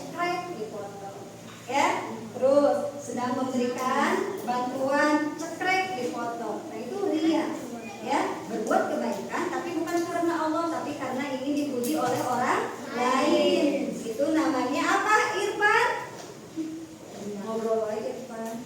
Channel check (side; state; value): both; identical; correlation 1.00